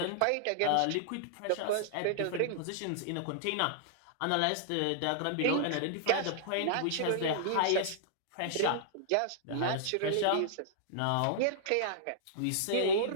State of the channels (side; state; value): both; different; correlation -0.01